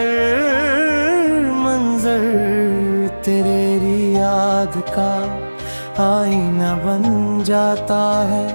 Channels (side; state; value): both; inverted; correlation -1.00